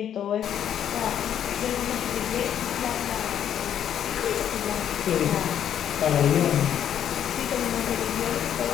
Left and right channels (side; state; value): right; quieter; 9.7 dB